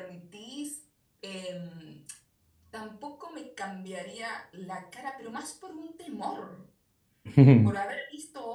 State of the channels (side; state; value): both; identical; correlation 1.00